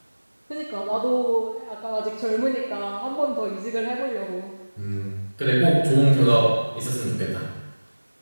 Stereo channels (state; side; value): inverted; both; correlation -1.00